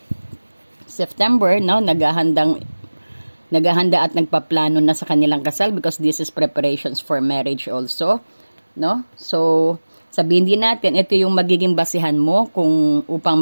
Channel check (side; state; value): both; inverted; correlation -1.00